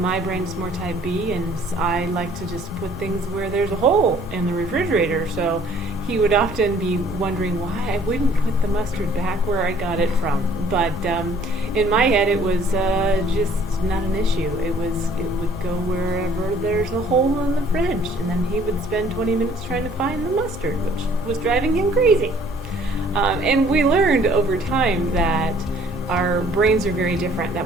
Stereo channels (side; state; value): both; normal; correlation 0.57